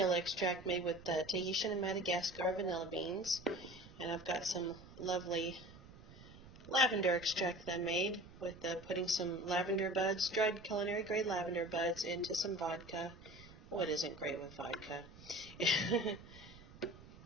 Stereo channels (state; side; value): noise; right; rumble, 19 dB below the sound